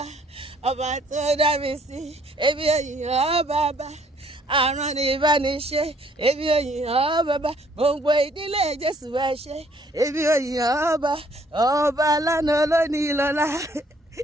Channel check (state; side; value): normal; both; correlation 0.63